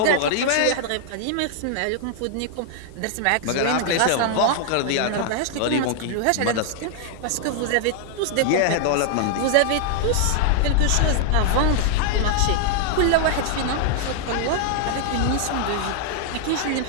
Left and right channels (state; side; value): different; both; correlation -0.01